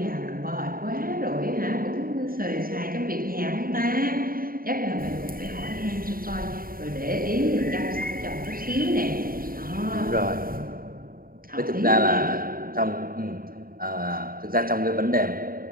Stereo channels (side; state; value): left; late; 0.42 ms